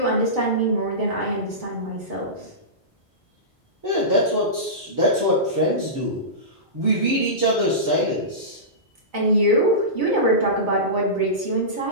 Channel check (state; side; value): normal; both; correlation -0.19